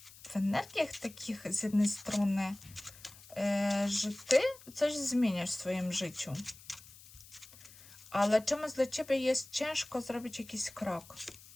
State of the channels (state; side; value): noise; left; hiss, 20 dB below the sound